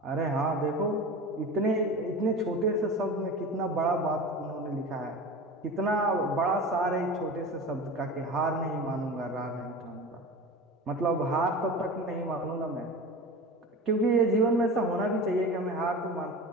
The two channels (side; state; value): both; normal; correlation 0.32